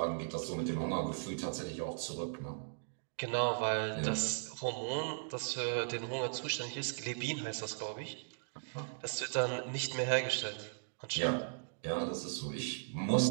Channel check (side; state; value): left; silent; digital silence